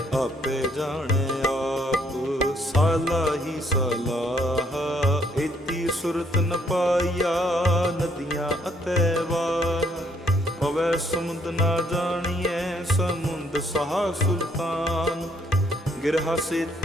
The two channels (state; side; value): normal; both; correlation 0.68